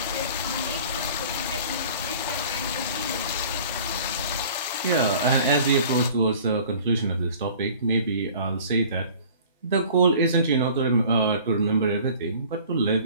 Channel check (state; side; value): inverted; both; correlation -0.47